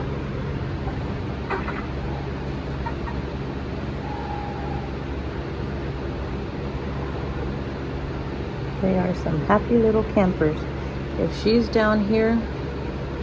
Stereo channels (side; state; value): both; identical; correlation 1.00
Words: They are some happy little campers. If she's down here,